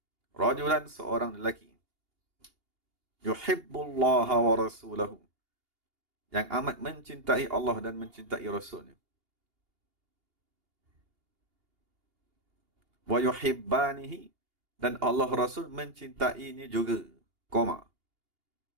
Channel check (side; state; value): left; late; 2.8 ms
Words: rajulan, seorang lelaki, yuhibbullaha wa rasulahu, yang amat mencintai Allah dan mencintai Rasulnya. Wa yuhibbanihi, dan Allah Rasul mencintainya juga. Koma.